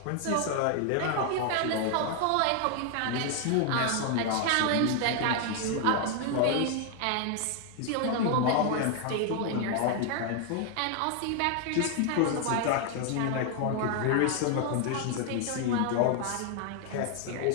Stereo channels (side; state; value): both; different; correlation 0.00